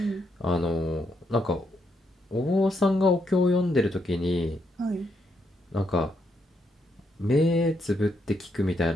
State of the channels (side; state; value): both; normal; correlation 0.78